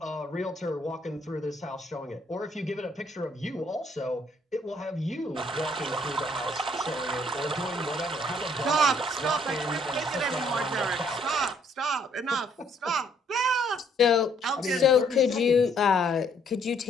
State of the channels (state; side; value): normal; both; correlation 0.66